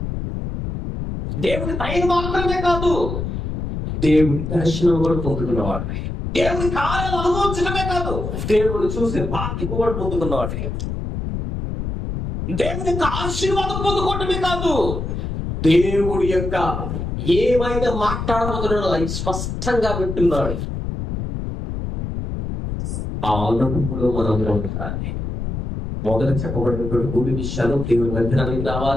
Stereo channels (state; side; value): noise; left; rumble, 4 dB below the sound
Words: దేవుని దయ మాత్రమే కాదు, దేవుడి దర్శనం కూడా పొందుకున్నవాడు. దేవుని కార్యాలు అనుభవించడమే కాదు, దేవుడు చూసే బాధ్యత కూడా పొందుకున్నవాడు. దేవుని ఆశీర్వాదం పొందుకోవటమే కాదు, దేవుడి యొక్క ఏమైతే మాట్లాడబోతున్నాడో అది స్పష్టంగా వింటున్నాడు. ఆ అనుభవంలో మనం ఉండాలి. మొదట చెప్పబడినటువంటి 3 విషయాలు దేవుని మందిరానికి